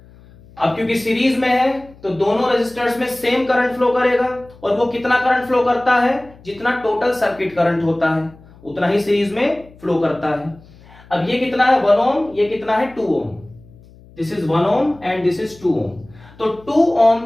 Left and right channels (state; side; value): noise; left; hum, 24 dB below the sound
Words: अब क्योंकि सीरीज में है तो दोनों रजिस्टर्स में सेम करंट फ्लो करेगा, और वो कितना करंट फ्लो करता है? जितना टोटल सर्किट करंट होता है उतना ही सीरीज में फ्लो करता है। अब ये कितना है? 1 ओम, ये कितना है? 2 ohm. This is 1 ohm and this is 2 ohm. तो 2